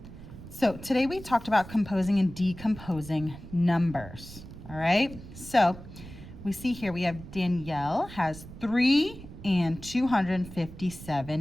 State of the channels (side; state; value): right; noise; rumble, 15 dB below the sound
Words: so today we talked about composing and decomposing numbers. All right, so we see here we have Danielle has 3 and